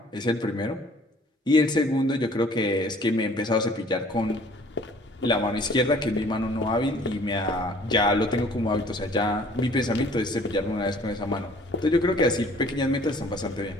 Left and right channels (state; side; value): normal; both; correlation 0.54